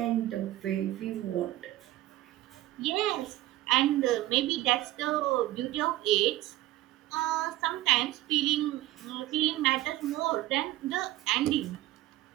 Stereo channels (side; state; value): left; quieter; 16.1 dB